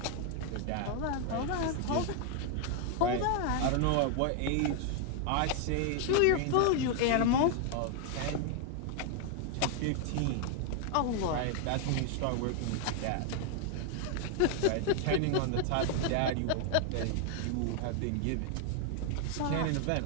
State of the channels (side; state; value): both; different; correlation 0.00